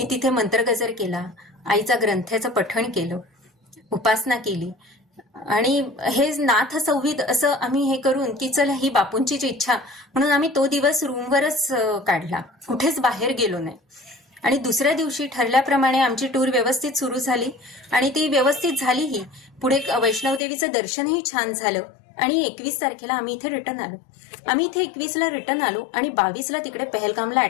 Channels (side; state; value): right; drops out; at 20.4 s